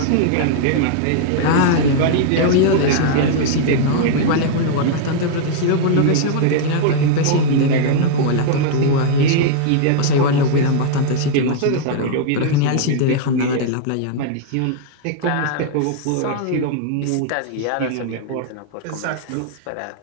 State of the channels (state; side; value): different; both; correlation -0.01